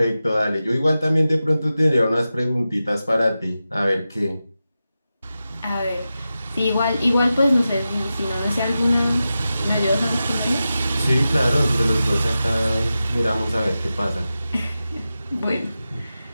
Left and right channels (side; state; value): both; inverted; correlation -0.92